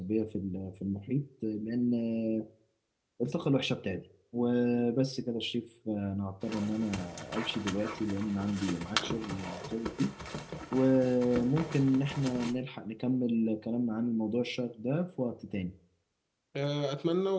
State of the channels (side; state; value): both; identical; correlation 1.00